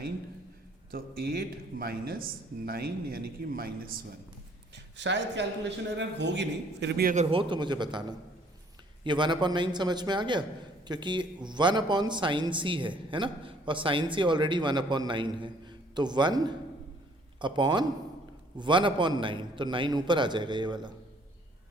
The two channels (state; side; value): normal; both; correlation 0.60